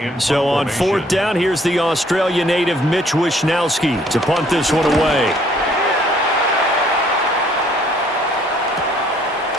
So on 4th down, here's the Australia native Mitch Wishnowsky to punt this one away.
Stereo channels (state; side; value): normal; both; correlation 0.62